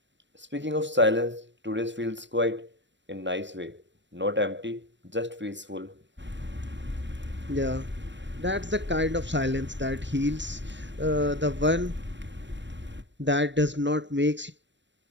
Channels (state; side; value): late; left; 0.53 ms